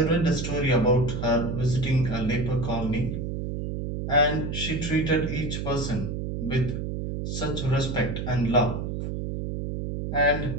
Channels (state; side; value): noise; right; hum, 4 dB below the sound